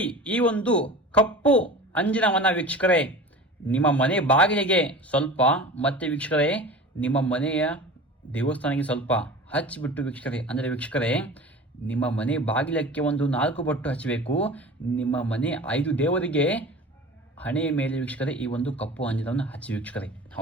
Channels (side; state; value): both; normal; correlation 0.37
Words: ಈ ಒಂದು ಕಪ್ಪು ಅಂಜಿನವನ ವೀಕ್ಷಕರೇ, ನಿಮ್ಮ ಮನೆ ಬಾಗಿಲಿಗೆ ಸ್ವಲ್ಪ ಮತ್ತೆ ವೀಕ್ಷಕರೇ ನಿಮ್ಮ ಮನೆಯ ದೇವಸ್ಥಾನಕ್ಕೆ ಸ್ವಲ್ಪ ಹಚ್ಚಿಬಿಟ್ಟು ವೀಕ್ಷಕರೇ, ಅಂದರೆ ವೀಕ್ಷಕರೇ ನಿಮ್ಮ ಮನೆ ಬಾಗಿಲಕ್ಕೆ ಒಂದು 4 ಬೊಟ್ಟು ಹಚ್ಚಬೇಕು. ನಿಮ್ಮ ಮನೆ 5 ದೇವರಿಗೆ ಹಣೆಯ ಮೇಲೆ ವೀಕ್ಷಕರೇ ಈ ಒಂದು ಕಪ್ಪು ಅಂಜಿನವನ್ನು ಹಚ್ಚಿ ವೀಕ್ಷಕರೇ.